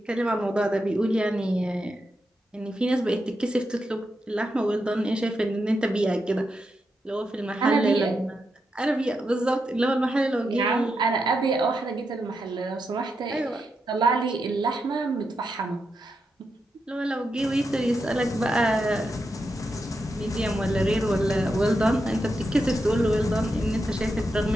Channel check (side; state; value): both; normal; correlation 0.85